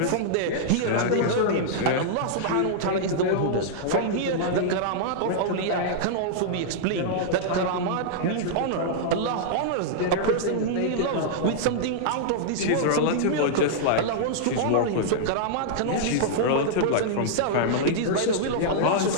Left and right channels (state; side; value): different; both; correlation -0.02